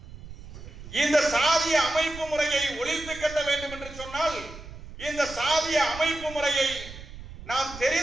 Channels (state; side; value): noise; right; rumble, 14 dB below the sound